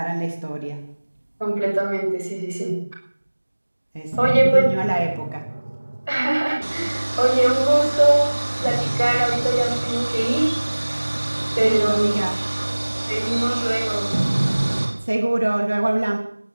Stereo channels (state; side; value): inverted; both; correlation -1.00